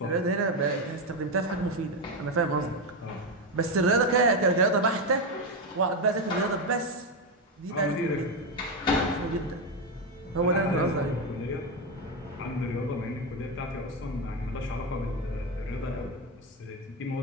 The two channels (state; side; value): normal; both; correlation 0.10